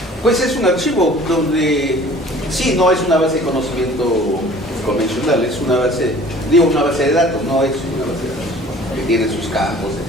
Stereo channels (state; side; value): normal; both; correlation 0.49